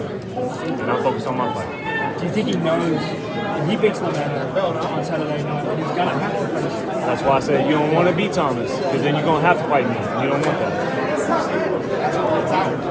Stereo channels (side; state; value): both; identical; correlation 1.00